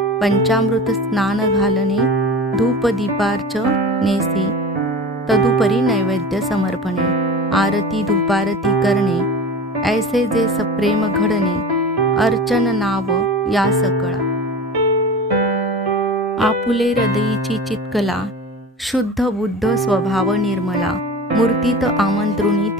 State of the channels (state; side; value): normal; both; correlation 0.34